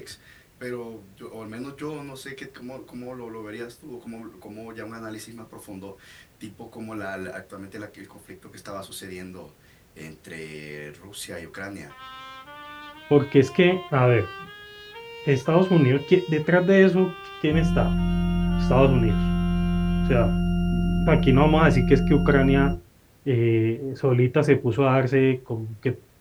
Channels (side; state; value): both; identical; correlation 1.00